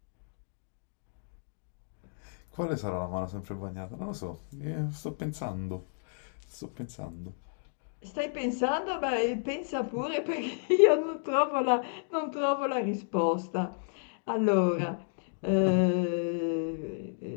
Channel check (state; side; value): silent; right; digital silence